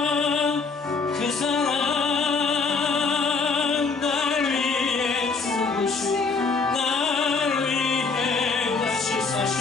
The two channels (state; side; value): quieter; right; 4.5 dB